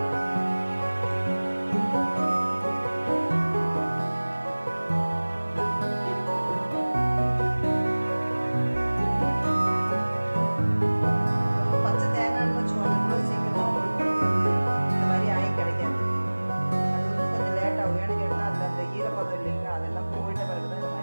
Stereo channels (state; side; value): inverted; both; correlation -1.00